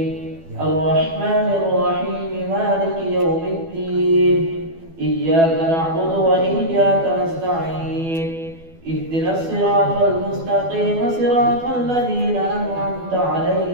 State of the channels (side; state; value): left; late; 12 ms